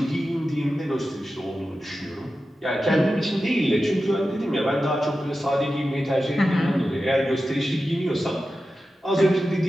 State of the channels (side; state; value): both; normal; correlation 0.92